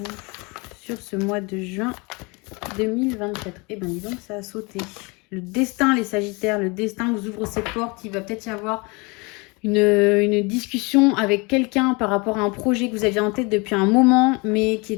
sur ce mois de juin 2024? Eh bien dis donc, ça a sauté. Le destin les Sagittaires, le destin vous ouvre ses portes. Il va peut-être y avoir une discussion avec quelqu'un par rapport à un projet que vous aviez en tête depuis un moment, mais qui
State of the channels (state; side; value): quieter; right; 28.0 dB